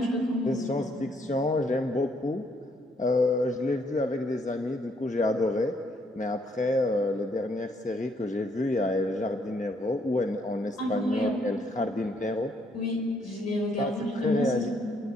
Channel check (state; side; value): normal; both; correlation 0.70